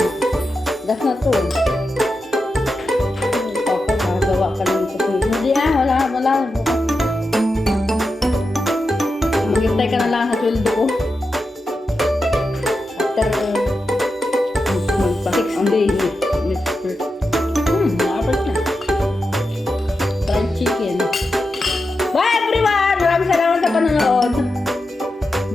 Das na to. Papa, nagawa ka ng kape. Hindi wala. Bukas. Maghintay ka na lang sa sweldo ko. After 6 days.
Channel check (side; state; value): both; normal; correlation 0.89